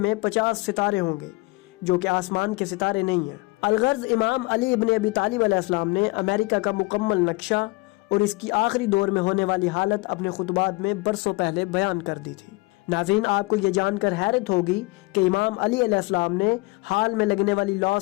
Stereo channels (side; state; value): right; quieter; 23.9 dB